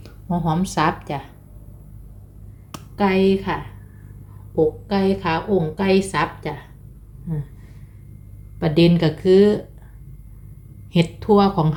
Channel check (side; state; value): both; identical; correlation 1.00